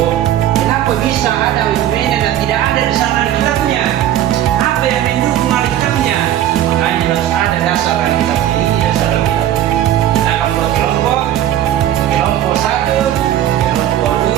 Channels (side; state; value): left; quieter; 12.0 dB